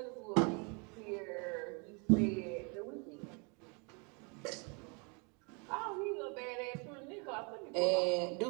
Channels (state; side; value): quieter; left; 33.7 dB